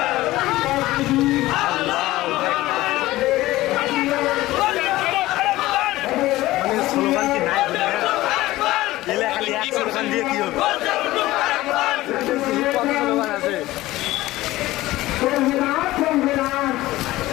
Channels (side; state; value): right; quieter; 17.2 dB